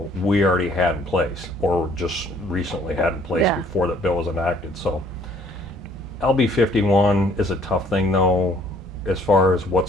we already had in place, or just recently had in place before that bill was enacted. So LB 51 is a tough thing, though, as far as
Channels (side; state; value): both; normal; correlation 0.61